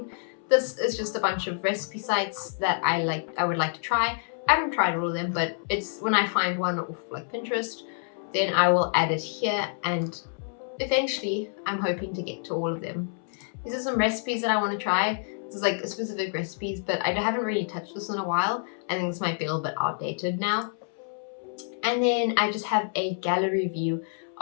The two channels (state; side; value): silent; right; 60 dB below the other